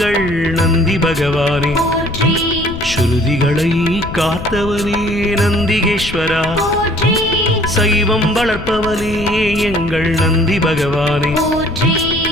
நந்தி பகவானே போற்றி ஸ்ருதிகளை காத்தவனே நந்திகேஸ்வரா போற்றி சைவம் வளர்ப்பவனே எங்கள் நந்தி பகவானே போற்றி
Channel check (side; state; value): left; noise; rumble, 10 dB below the sound